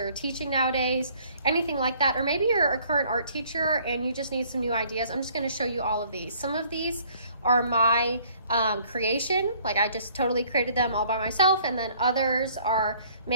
teaching nowadays, anything like that, or maybe you're a current art teacher and you just need some new ideas, I'm just going to show you all of these. Some of these are my creation, like I just totally created them all by myself, and then others are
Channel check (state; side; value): inverted; both; correlation -0.59